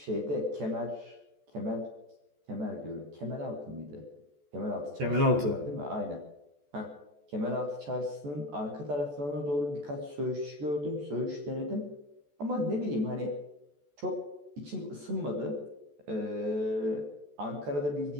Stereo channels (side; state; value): left; late; 14 ms